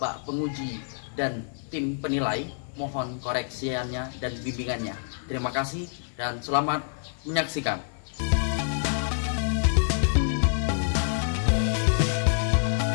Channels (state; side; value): silent; right; 55 dB below the other